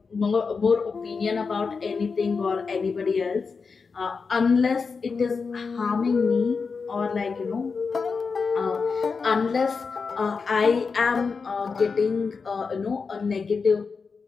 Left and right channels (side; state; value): right; quieter; 5.0 dB